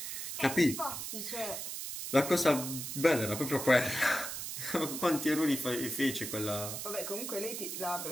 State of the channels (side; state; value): right; noise; hiss, 6 dB below the sound